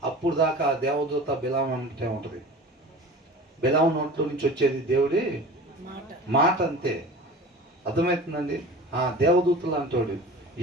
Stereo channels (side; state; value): both; normal; correlation 0.38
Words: అప్పుడు దాకా దేవదూత బిలాం అంటే ఉంటుంది. బిలాం నోట్లో నుంచి వచ్చేది దేవుడి మాట అంతే. అర్థమవుతుందండి? దేవదూతలు అంటాడు.